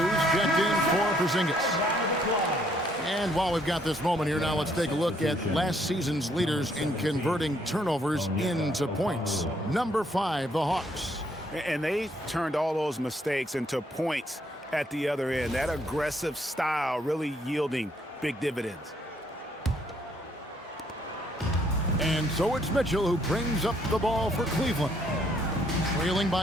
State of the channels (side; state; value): both; normal; correlation 0.69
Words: checked in for Porzingis. And while we've got this moment here, now let's take a look at last season's leaders in converting turnovers into points. Number 5, the Hawks. And they turned all those mistakes into points at the other end. That aggressive style really yielding big dividends. And so it's Mitchell who brings up the ball for Cleveland. Trailing